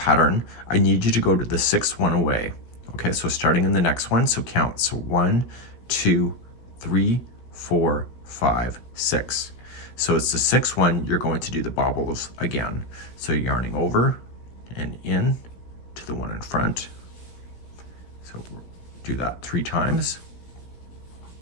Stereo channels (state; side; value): late; right; 17 ms